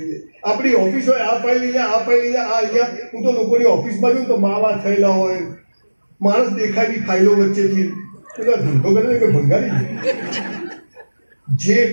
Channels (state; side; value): inverted; both; correlation -1.00